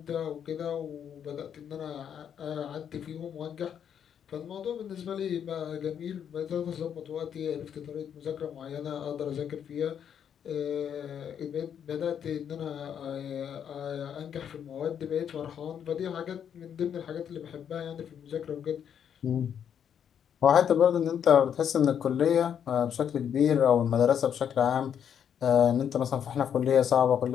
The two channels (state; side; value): quieter; right; 8.5 dB